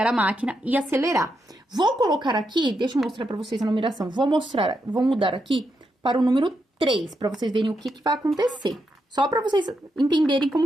a máquina e acelerar. Vou colocar aqui, deixa eu mostrar pra vocês a numeração. Vou mudar aqui para o número 3, pra vocês verem o que vai acontecer. Só pra vocês entenderem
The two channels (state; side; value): normal; both; correlation 0.83